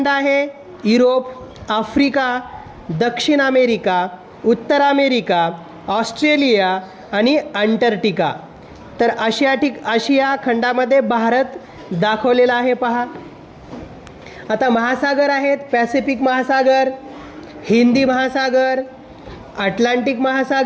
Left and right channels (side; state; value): both; identical; correlation 1.00